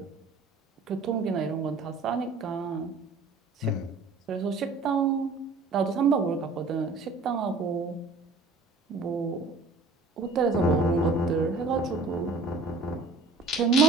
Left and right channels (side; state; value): left; quieter; 3.6 dB